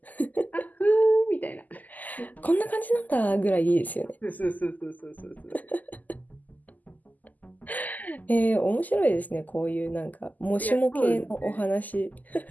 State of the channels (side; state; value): right; late; 0.081 ms